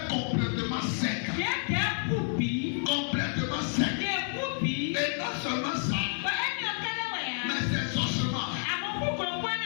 complètement secs. Complètement secs. Et non seulement ça, mais ces ossements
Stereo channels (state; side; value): silent; right; 58 dB below the other